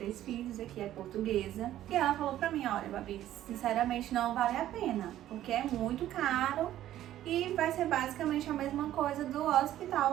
filhos, aqui é portuguesa. E ela falou pra mim, olha, Babi, sinceramente não vale a pena, porque é muito caro e vai ser basicamente a mesma coisa do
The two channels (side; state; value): left; quieter; 12.9 dB